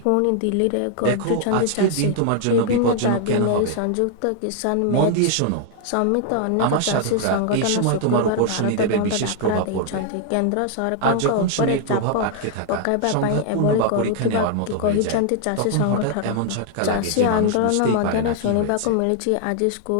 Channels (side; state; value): both; different; correlation 0.00